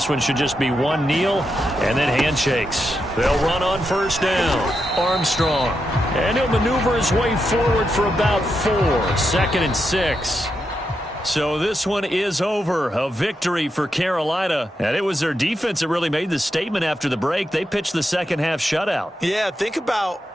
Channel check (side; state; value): both; normal; correlation 0.85